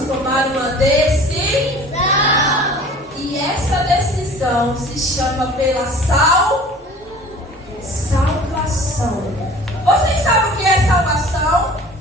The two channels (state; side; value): normal; both; correlation 0.46